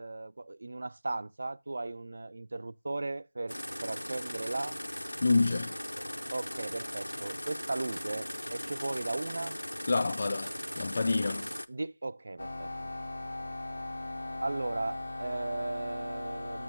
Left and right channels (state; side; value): inverted; both; correlation -0.96